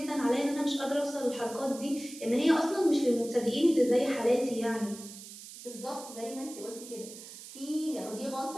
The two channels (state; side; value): noise; right; hiss, 14 dB below the sound